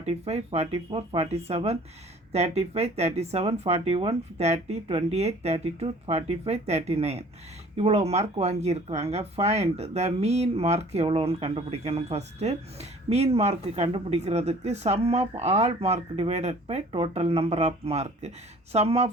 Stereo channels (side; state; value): both; normal; correlation 0.51